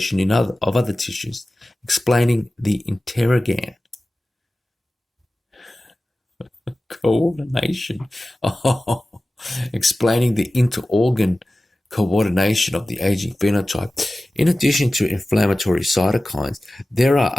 of other tissues, explaining the interorgan coordination. Explaining the interorgan coordination of the aging phenotype. In addition to inflammatory cytokines, there are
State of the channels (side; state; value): both; normal; correlation 0.96